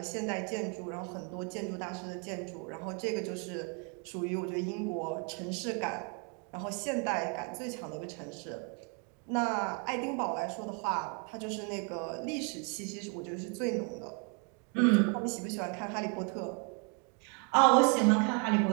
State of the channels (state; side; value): quieter; left; 37.3 dB